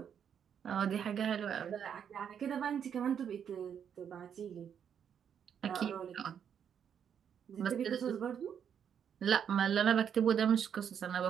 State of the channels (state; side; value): quieter; left; 8.1 dB